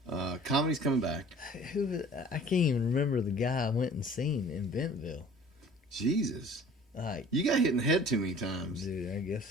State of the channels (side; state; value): both; normal; correlation 0.48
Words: Comedy's coming back. I can't even remember the guy I went and seen in Bentonville. Jesus. Like, you got hit in the head too many times. Dude, I guess